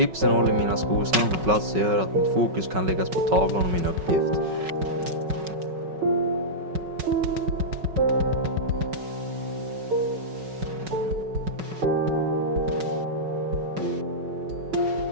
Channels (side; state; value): left; late; 5.4 ms